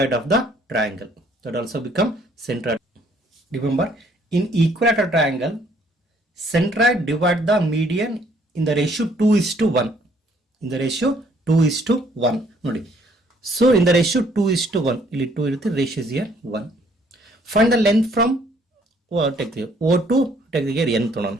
of the triangle, that also become centroid. Remember, in equilateral triangle, centroid divide the median in the ratio 2:1. In the ratio 2:1. Nodi. So in the ratio 2:1, ಇಲ್ಲಿ 2 ಇರುತ್ತೆ, ratio is here 1. Find the length from take the O2, take the here n tonon.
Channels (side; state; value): both; normal; correlation 0.64